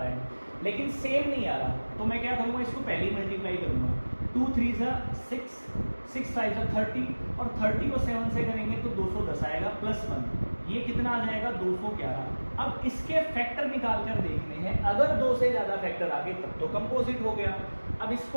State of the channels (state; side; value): inverted; both; correlation -1.00